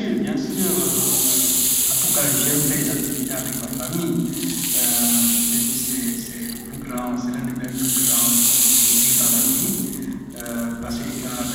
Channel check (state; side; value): identical; both; correlation 1.00